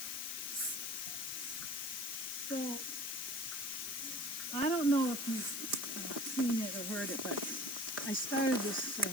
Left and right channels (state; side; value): noise; left; hiss, 3 dB below the sound